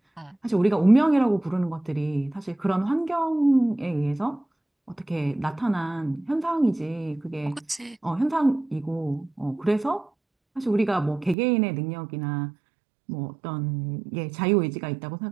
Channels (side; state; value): left; drops out; at 11.4 s